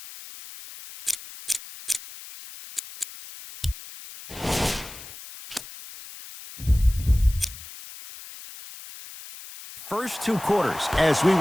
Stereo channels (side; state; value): left; noise; hiss, 15 dB below the sound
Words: first 2 quarters as we